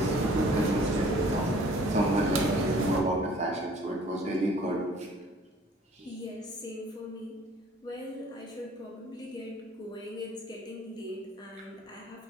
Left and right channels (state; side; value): normal; both; correlation 0.54